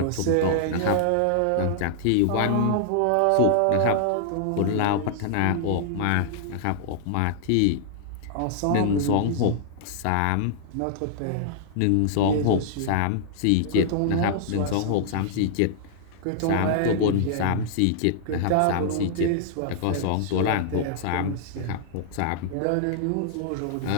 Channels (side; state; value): both; different; correlation -0.01